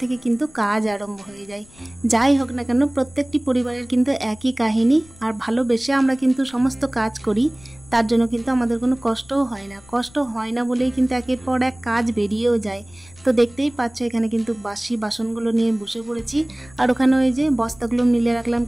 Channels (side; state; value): left; noise; rumble, 25 dB below the sound